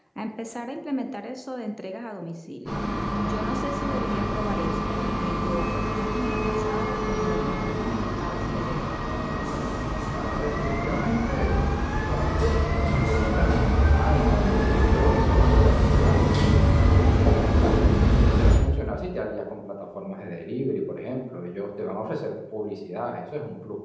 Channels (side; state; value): both; identical; correlation 1.00